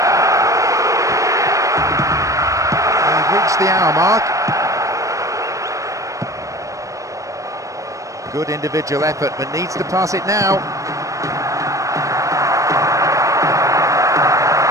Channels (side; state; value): left; late; 0.16 ms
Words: The hour mark. Good individual effort, but needs to pass it now.